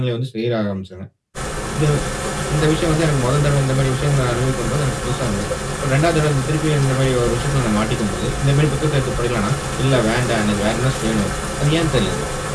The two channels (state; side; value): identical; both; correlation 1.00